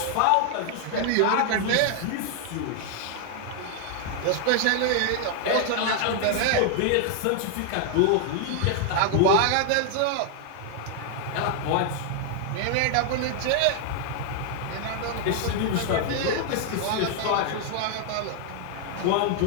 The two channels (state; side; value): different; both; correlation 0.00